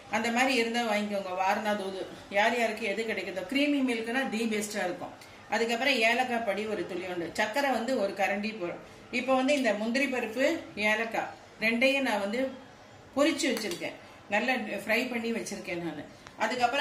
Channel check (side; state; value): both; identical; correlation 1.00